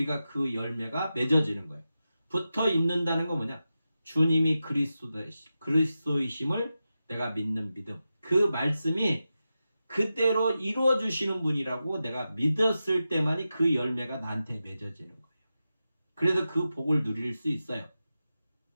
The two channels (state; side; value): inverted; both; correlation -0.92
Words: 그 열매가 맺어지는 거예요. 붙어 있는다는 건 뭐냐? 주님이 그리스도이심을 내가 믿는 믿음. 그 말씀이 그대로 이루어 주시는 분이라고 내가 믿었을 때만이 그 열매가 나한테 맺어지는 거예요. 그래서 그 복을 누릴 수 있어요.